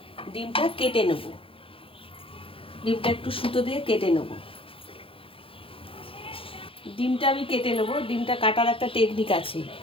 ডিমটা কেটে নেব, ডিমটা একটু সুতো দিয়ে কেটে নেব। ডিমটা আমি কেটে নেব। ডিমটা কাটার একটা টেকনিক আছে।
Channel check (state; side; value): late; right; 0.26 ms